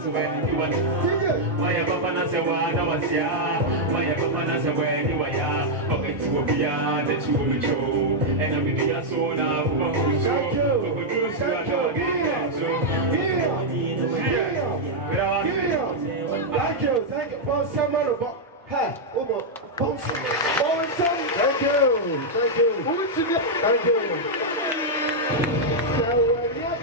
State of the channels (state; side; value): normal; both; correlation -0.03